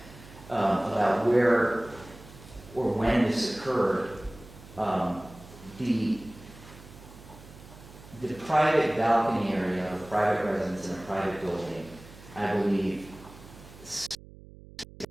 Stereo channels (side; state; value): right; noise; hum, 19 dB below the sound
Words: about where or when this occurred, the private balcony area of a private residence in a private building, I believe,